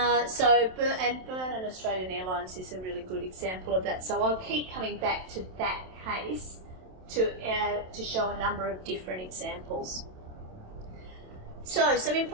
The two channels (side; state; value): left; late; 27 ms